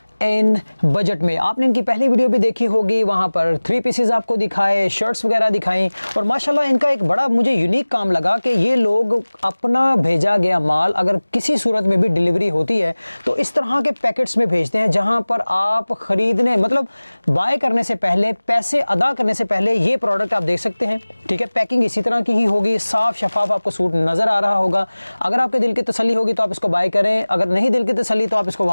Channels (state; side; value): inverted; both; correlation -1.00